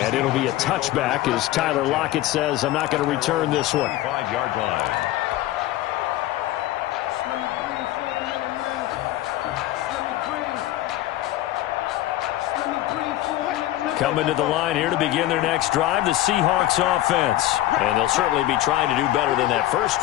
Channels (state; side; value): quieter; right; 14.9 dB